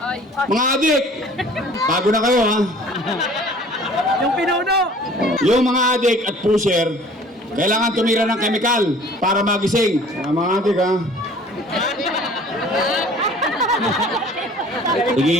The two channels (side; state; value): both; normal; correlation 0.50